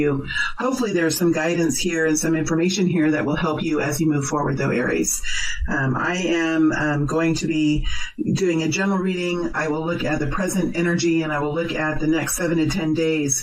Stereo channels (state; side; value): identical; both; correlation 1.00